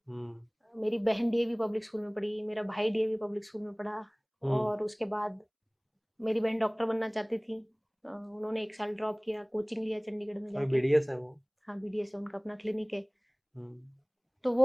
हुँ। मेरी बहन डीएवी पब्लिक स्कूल में पढ़ी, मेरा भाई डीएवी पब्लिक स्कूल में पढ़ा, हुँ। और उसके बाद मेरी बहन डॉक्टर बनना चाहती थी। उन्होंने 1 साल ड्रॉप किया, कोचिंग लिया चंडीगढ़ में अभी जाके। बीडीएस है वो? हाँ, बीडीएस है, उनका अपना क्लिनिक है। हुँ। तो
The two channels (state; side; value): identical; both; correlation 1.00